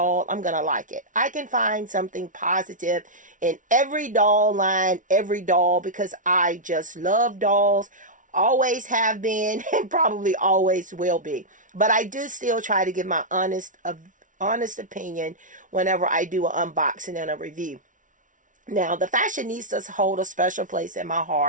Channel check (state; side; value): late; left; 0.38 ms